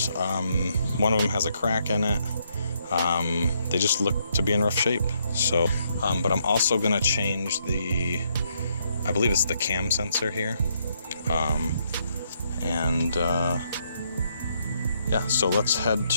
one of them has a crack in it. They just look to be in rough shape. So, but I'm also going to change I believe it's the cam sensor here. Yeah, so let's head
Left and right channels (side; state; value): both; inverted; correlation -0.74